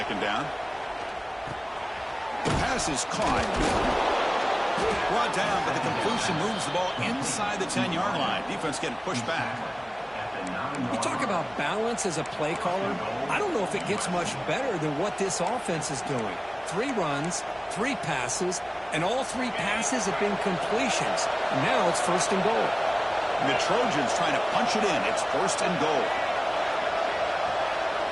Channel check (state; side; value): identical; both; correlation 1.00